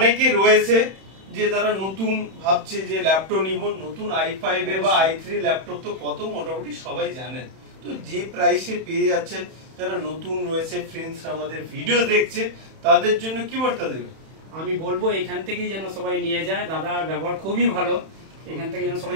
রয়েছে যে তারা নতুন ভাবছে যে ল্যাপটপ নিব, নতুন i5 এর বা i3 ল্যাপটপ তো কত মোটামুটি সবাই জানেন। তো যে প্রাইসে পেয়ে যাচ্ছেন, যারা নতুন রয়েছে ফ্রেন্ডস আমাদের ভিডিও দেখছে, তাদের জন্য কি বার্তা দেবে? আমি বলবো এখান থেকেই যেন সবাই নিয়ে যায়, দাদার ব্যবহার খুবই ভালো, এখান থেকে যেন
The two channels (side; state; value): left; late; 31 ms